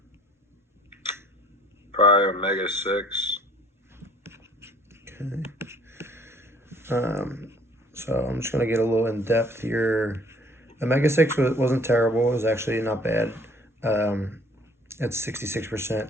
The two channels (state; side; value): normal; both; correlation 0.56